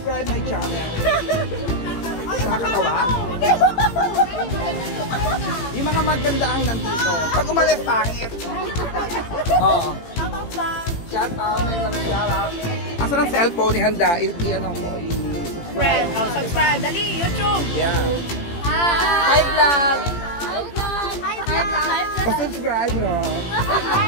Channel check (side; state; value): right; late; 18 ms